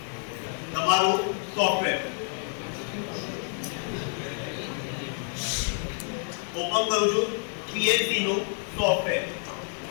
તમારું સોફ્ટવેર ઓપન કરું છું. પીએલસી નું સોફ્ટવેર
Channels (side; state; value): right; silent; 59 dB below the other